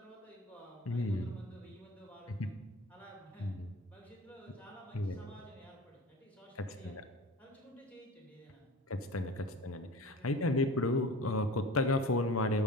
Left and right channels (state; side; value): normal; both; correlation 0.37